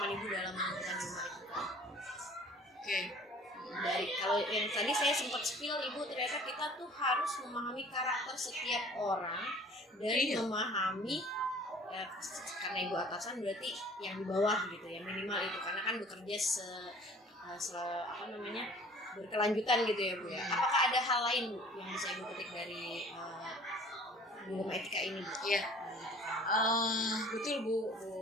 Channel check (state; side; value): normal; both; correlation 0.49